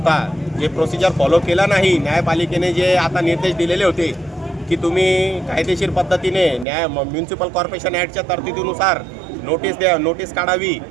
जे प्रोसिजर फॉलो केला नाही, न्यायपालिकेने जे आता निर्देश दिलेले होते की तुम्ही कायदेशीर पद्धतीने म्युन्सिपल कॉर्पोरेशन ॲक्टच्या तरतुदीनुसार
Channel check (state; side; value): drops out; left; at 6.7 s